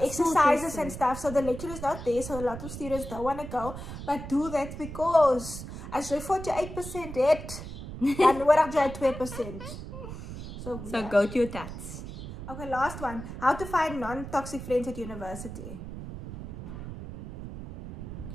and stuff. So the lecturer is not there, so a lot of students don't want to go, but do that, because as you're 48% it, and we're up to 2%. So go to your tats. Okay, last one. How to find non-toxic friends at university.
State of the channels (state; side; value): noise; right; rumble, 10 dB below the sound